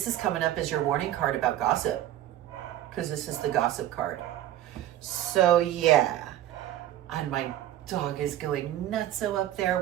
is coming up as your warning card about gossip, because this is the gossip card. So yeah, and my dog is going nutso up there.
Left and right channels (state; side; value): quieter; left; 12.9 dB